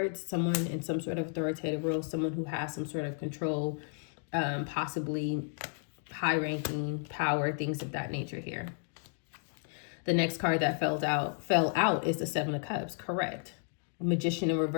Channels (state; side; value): silent; right; 56 dB below the other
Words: someone in some sort of authoritative role, someone who has some sort of control, possibly high ranking power, things of that nature here. The next card that fell out is the Seven of Cups. Correct. Magician in